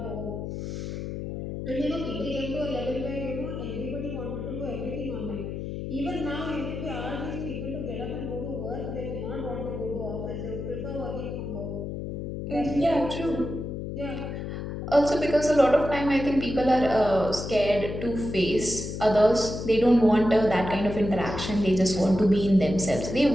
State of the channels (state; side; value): noise; left; hum, 6 dB below the sound